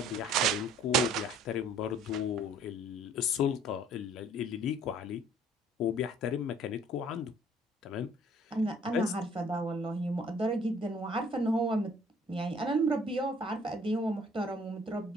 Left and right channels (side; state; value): both; normal; correlation 0.56